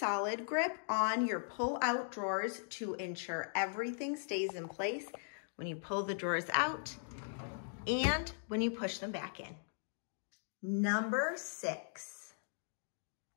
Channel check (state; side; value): silent; right; digital silence